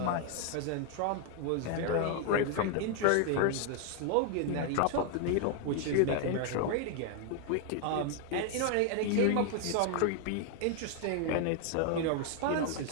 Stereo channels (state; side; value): different; both; correlation 0.00